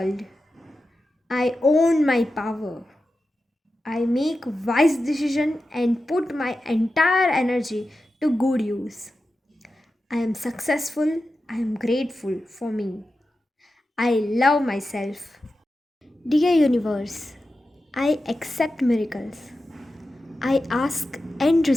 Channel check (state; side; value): normal; both; correlation 0.92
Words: I own my power. I make wise decisions and put my entire energy to good use. I am successful. I am grateful for me. I love myself. Dear Universe, I accept miracles. I ask and